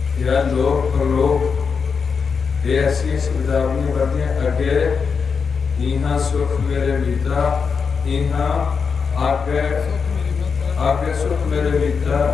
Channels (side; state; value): right; quieter; 5.7 dB